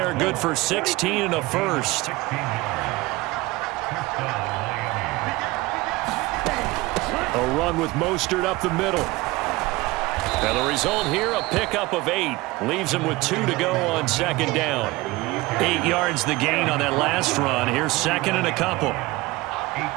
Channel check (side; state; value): left; quieter; 21.0 dB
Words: good for 16 and a first. A run with Mostert up the middle. Now the result here, a pickup of 8. Leaves him with 2 to go on 2nd down. 8 yards the gain on that last run. Here's 2nd and a couple.